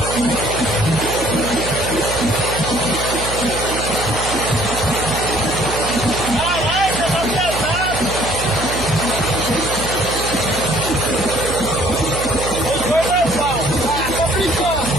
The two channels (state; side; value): noise; right; hum, 7 dB below the sound